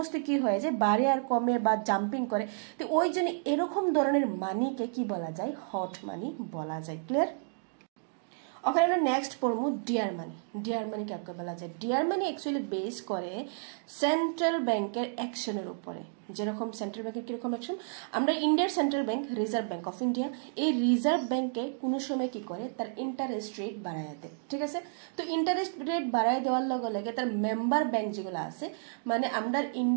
কি হয়ে যায় বাড়ে আর কমে বা জাম্পিং করে তো ওই জন্য এরকম ধরনের মানিকে কি বলা যায় হট মানি বলা যায় ক্লিয়ার ওখানে আমরা নেক্সট পড়বো ডিয়ার মানি কাকে বলা যায় ডিয়ার মানি অ্যাকচুয়ালি বেস করে সেন্ট্রাল ব্যাংকের অ্যাকশনের উপরে যেরকম সেন্ট্রাল ব্যাংকের কিরকম অ্যাকশন আমরা ইন্ডিয়ার central bank reserve bank of India এই রিজার্ভ ব্যাংকে কোনো সময় কি করে তার ইন্টারেস্ট রেট বাড়ায় দেয় ঠিক আছে তো ইন্টারেস্ট রেট বাড়ায় দেওয়ার লগে লগে তার মেম্বার ব্যাংক যেগুলো আছে মানে আমরা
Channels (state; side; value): silent; left; digital silence